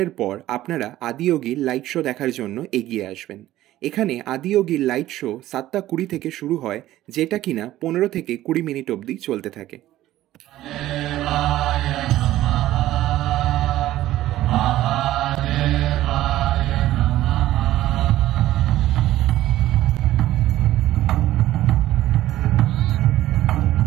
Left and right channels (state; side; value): quieter; left; 14.6 dB